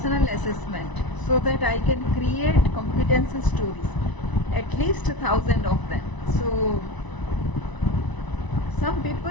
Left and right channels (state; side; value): late; right; 1.0 ms